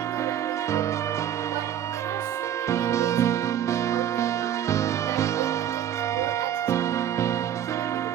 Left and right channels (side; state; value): left; quieter; 10.3 dB